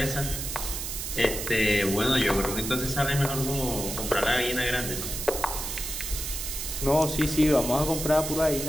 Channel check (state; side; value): noise; right; hiss, 5 dB below the sound